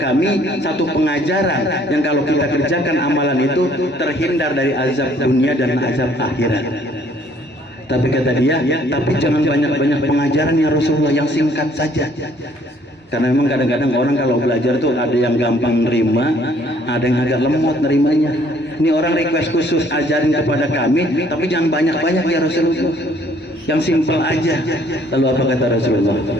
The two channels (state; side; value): normal; both; correlation 0.61